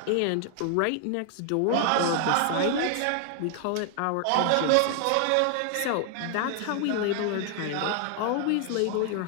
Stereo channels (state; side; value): different; both; correlation 0.00